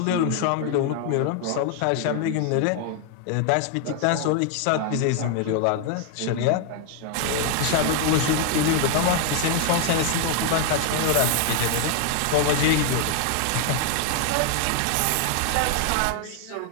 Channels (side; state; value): both; different; correlation 0.00